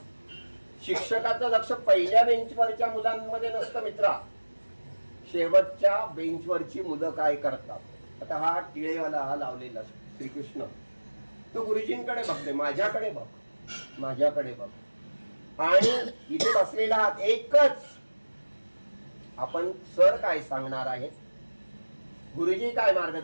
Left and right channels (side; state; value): both; inverted; correlation -1.00